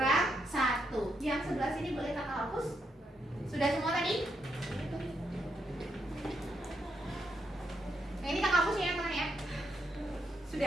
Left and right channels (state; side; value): normal; both; correlation 0.79